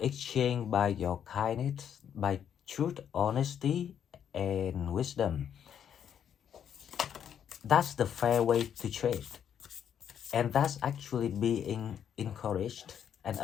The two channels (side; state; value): right; quieter; 8.9 dB